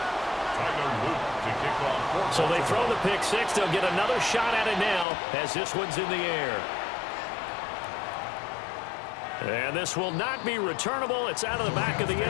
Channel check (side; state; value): right; drops out; at 5.1 s